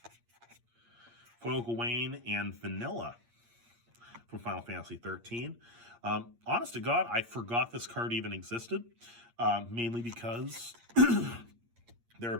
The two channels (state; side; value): late; left; 8.6 ms